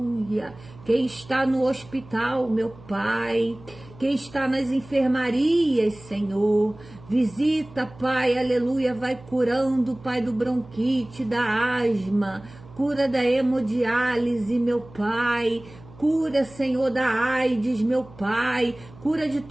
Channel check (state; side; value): noise; right; hum, 21 dB below the sound